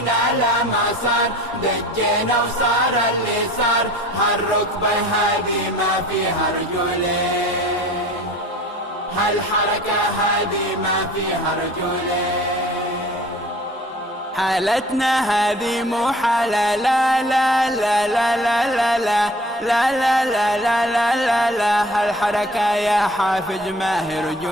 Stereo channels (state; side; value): normal; both; correlation 0.47